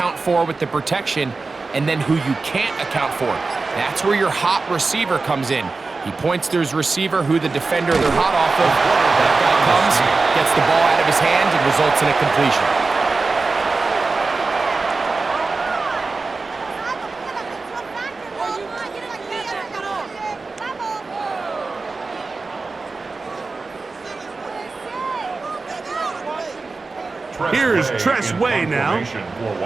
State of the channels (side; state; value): left; quieter; 3.9 dB